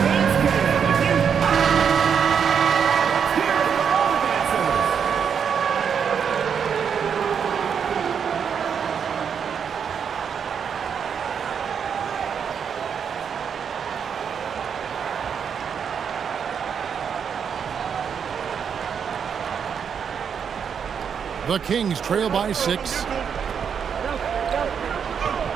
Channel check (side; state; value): left; quieter; 7.2 dB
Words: The Kings trail by 6.